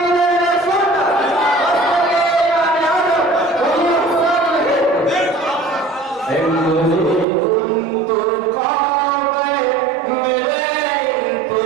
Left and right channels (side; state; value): left; drops out; at 7.2 s